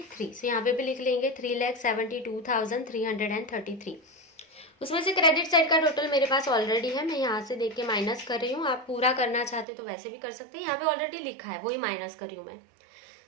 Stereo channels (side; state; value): left; drops out; at 9.7 s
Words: यहाँ पे भी लिख लेंगे 3,72,333। उसमें से क्रेडिट साइड का टोटल मेरे पास ऑलरेडी है, मैं यहाँ से देख के माइनस कर रही हूँ। आप पूरा करना चाहते तो वैसे भी कर सकते हैं, यहाँ पे ऑलरेडी लिखा है वही माइनस कर रही हूँ मैं।